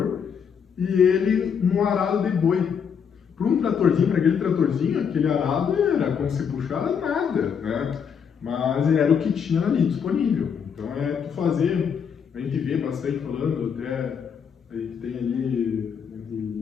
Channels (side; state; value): right; quieter; 7.1 dB